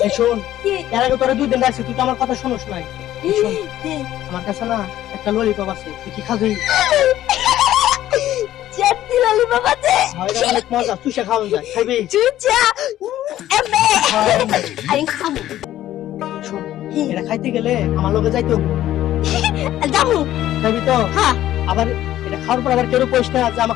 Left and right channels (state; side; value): quieter; right; 13.2 dB